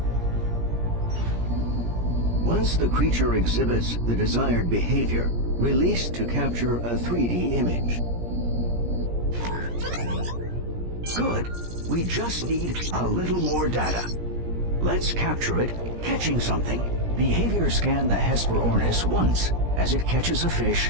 Once the creature exhibits the desired behavior, release to capture a 3D image. Good. We just need a little more data. Let's capture it, catching something. Behavior scan the Hesperornis once as it catches a fish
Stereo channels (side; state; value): left; late; 17 ms